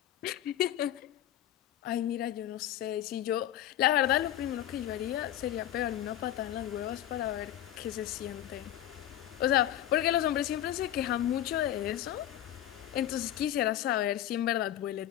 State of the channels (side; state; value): right; quieter; 12.2 dB